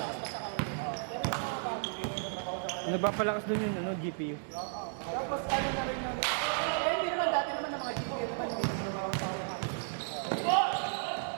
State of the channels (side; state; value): left; silent; digital silence